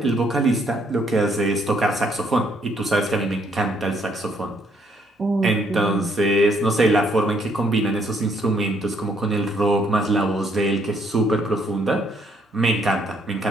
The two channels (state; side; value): normal; both; correlation 0.69